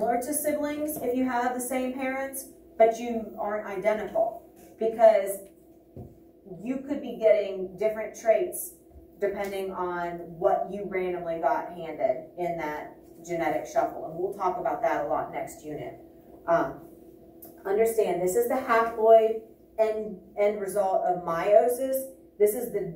to siblings if you have the same parents, but you aren't identical, because you could be getting different traits depending on what you randomly got handed in that genetic shuffle. And we'll talk about that a lot next unit. Understand, this is the haploid end result of meiosis. This is the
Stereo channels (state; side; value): identical; both; correlation 1.00